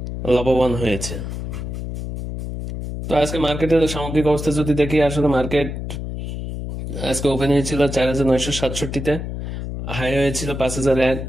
লাভবান হয়েছে। তো আজকে মার্কেটের সামগ্রিক অবস্থা যদি দেখি, আসলে মার্কেট আজকে ওপেন হয়েছিল 4,967-তে, হাই হয়েছিল 5,001,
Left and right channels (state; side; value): noise; left; hum, 6 dB below the sound